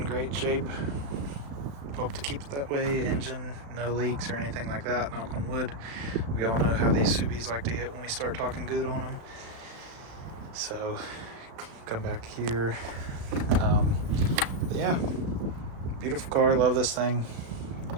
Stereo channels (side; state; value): left; late; 35 ms